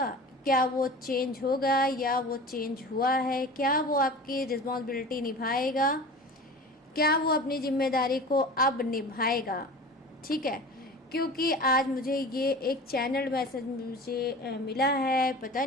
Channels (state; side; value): normal; both; correlation 0.37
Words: क्या वो चेंज होगा या वो चेंज हुआ है? क्या वो आपकी रिस्पॉन्सिबिलिटी निभाएगा? क्या वो अपनी जिम्मेदारी को अब निभाएगा? ठीक है, क्योंकि आज मुझे ये एक चैनल मैसेज मुझे मिला है। पता